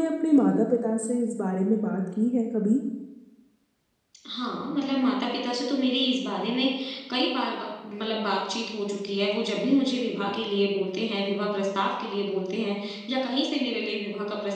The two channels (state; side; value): identical; both; correlation 1.00